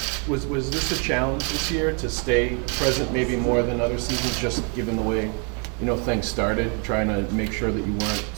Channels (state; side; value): quieter; left; 37.5 dB